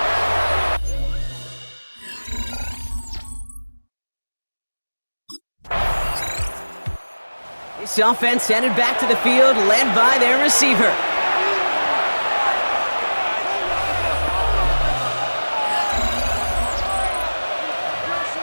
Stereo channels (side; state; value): both; inverted; correlation -1.00